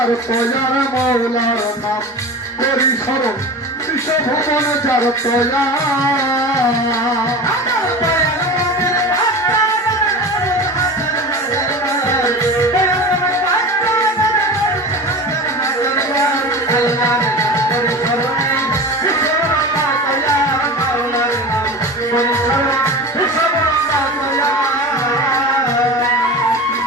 তয়ার মৌলার নাম করি স্মরণ বিশ্বভুবন যার তয়া।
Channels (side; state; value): both; normal; correlation 0.31